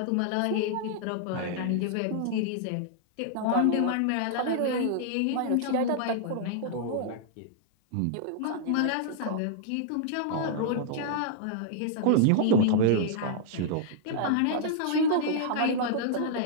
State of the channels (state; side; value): different; both; correlation -0.01